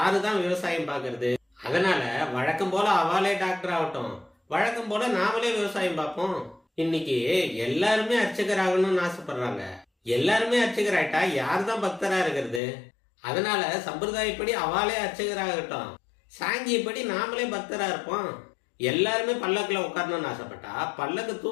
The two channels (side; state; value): right; drops out; at 12.6 s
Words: தான் விவசாயம் பார்க்கறது? அதனால வழக்கம் போல அவாலே டாக்டர் ஆகட்டும், வழக்கம் போல நாமளே விவசாயம் பார்ப்போம். இன்னைக்கு எல்லாருமே அர்ச்சகர் ஆகணும்னு ஆசைப்படுறாங்க. எல்லாருமே அர்ச்சகர் ஆயிட்டா யாரு தான் பக்தரா இருக்கிறது? அதனால சம்பிரதாயப்படி அவாலே அர்ச்சகராகட்டும், சாங்கியப்படி நாமளே பக்தரா இருப்போம். எல்லாருமே பல்லக்குல உட்காரணும்னு ஆசைப்பட்டா பல்லக்கு